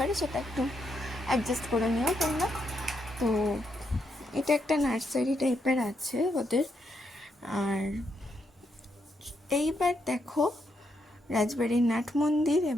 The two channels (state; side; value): normal; both; correlation 0.79